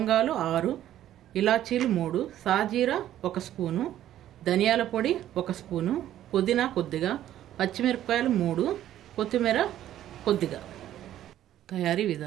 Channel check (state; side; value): quieter; left; 12.2 dB